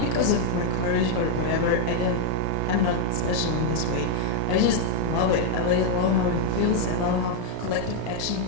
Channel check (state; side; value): different; both; correlation 0.00